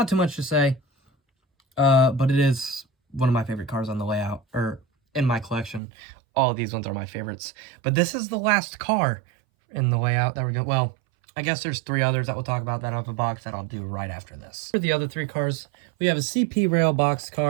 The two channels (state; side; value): drops out; left; at 5.8 s